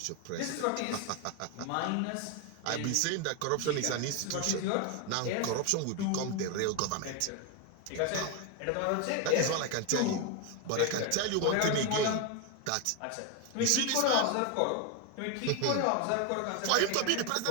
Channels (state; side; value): different; both; correlation 0.01